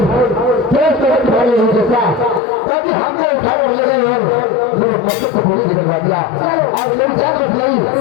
तेज तरह तुम्हारे नहीं जैसा कभी हमने उठा कर ले गए और मेरे मकसद को बोली निकलवा दिया और मेरी जान बच गई।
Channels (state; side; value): drops out; right; at 2.4 s